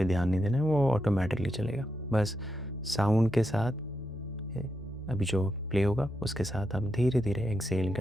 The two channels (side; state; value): left; noise; hum, 29 dB below the sound